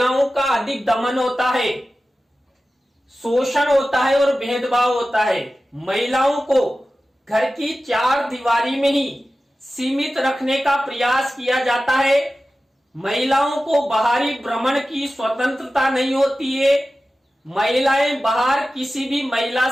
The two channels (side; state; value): both; normal; correlation 0.95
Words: का अधिक दमन होता है, शोषण होता है और भेदभाव होता है। महिलाओं को घर की चार दीवारी में ही सीमित रखने का प्रयास किया जाता है। महिलाओं को बाहरी भ्रमण की स्वतंत्रता नहीं होती है। महिलाएं बाहर किसी भी महिला